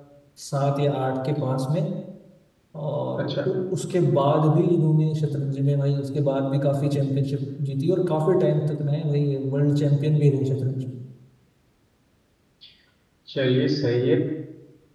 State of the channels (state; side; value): identical; both; correlation 1.00